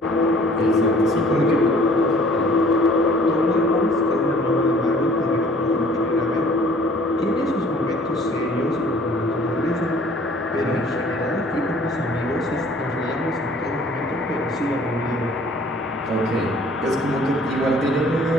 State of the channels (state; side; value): normal; both; correlation 0.54